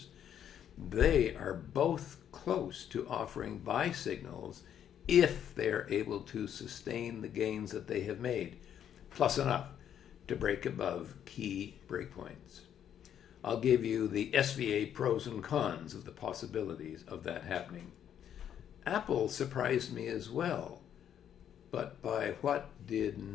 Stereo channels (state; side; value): quieter; right; 9.5 dB